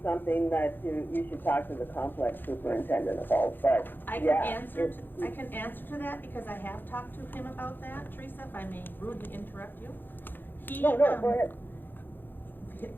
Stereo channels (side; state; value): right; late; 0.094 ms